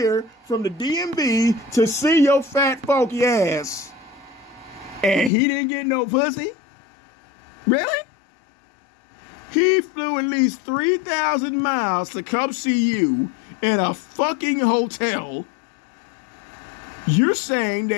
from the DMV to see your fat funky ass. And he didn't get no pussy? Really? He flew at least 3,000 miles to come see you in a fucking hotel. You're saying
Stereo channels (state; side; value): drops out; right; at 5.3 s